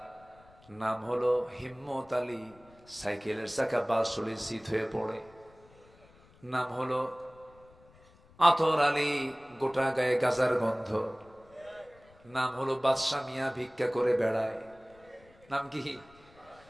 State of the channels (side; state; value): left; noise; rumble, 27 dB below the sound